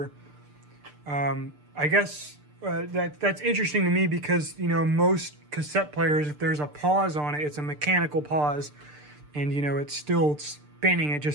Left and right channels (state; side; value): late; left; 6.7 ms